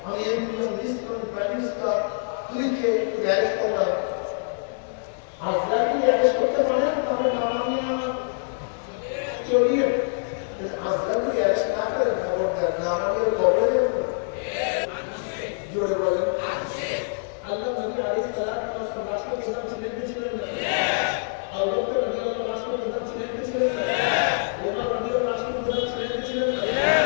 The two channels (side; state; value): right; silent; 62 dB below the other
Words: আমি এমপি, মিনিস্টার, প্রাইম মিনিস্টার, তুইকে অ্যারেস্ট করলাম। আজরাইল কি অ্যারেস্ট করতে পারেন? তাহলে নামানিয়া চলিয়ে আজরাইল কি অ্যারেস্ট না করেন, খবর দেন নামানিয়া কবরে জোরে বলেন। আল্লাহ নবী আলাইহিস সালাতু ওয়াস সালাম রাষ্ট্রপ্রধান ছিলেন কি ছিলেন না? আবু বকর রাদিয়াল্লাহু আনহু রাষ্ট্রপ্রধান ছিলেন কি ছিলেন না? ওমর রাদিয়াল্লাহু আনহু রাষ্ট্রপ্রধান ছিলেন কি ছিলেন না?